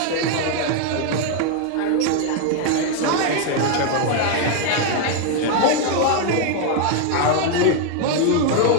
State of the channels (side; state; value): both; different; correlation 0.01